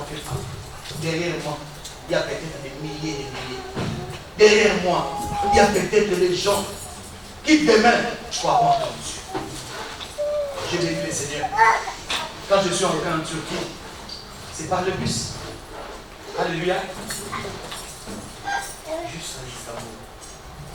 fais pas. Derrière moi, il y a peut-être des milliers et des milliers. Derrière moi, il y a peut-être des gens qui demain croiront en Dieu. J'ai béni le Seigneur. Quand je suis entré en Turquie, c'est par le bus. Alléluia. Juste à Istanbul.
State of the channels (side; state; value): both; identical; correlation 1.00